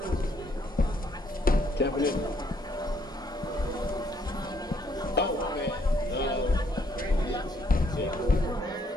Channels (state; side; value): normal; both; correlation 0.69